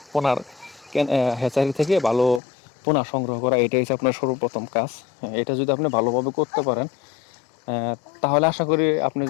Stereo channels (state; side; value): drops out; right; at 2.4 s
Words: পোনার হ্যাচারি থেকে ভালো পোনা সংগ্রহ করা। এটাই হচ্ছে আপনার সর্বপ্রথম কাজ। এটা যদি আপনি ভালোভাবে করতে পারেন, তাহলে আশা করি আপনি